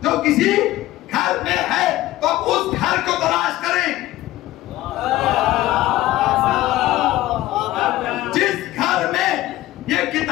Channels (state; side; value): quieter; right; 16.0 dB